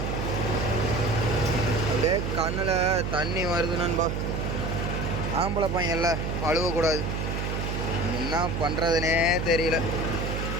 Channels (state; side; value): noise; right; hum, 2 dB below the sound